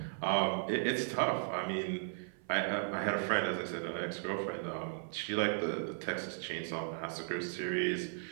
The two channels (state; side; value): silent; left; 54 dB below the other